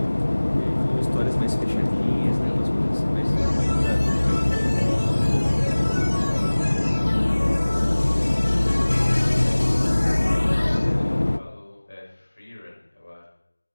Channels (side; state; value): both; inverted; correlation -1.00